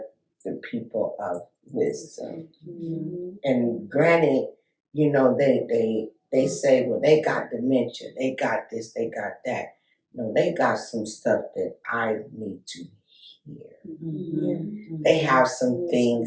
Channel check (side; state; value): both; identical; correlation 1.00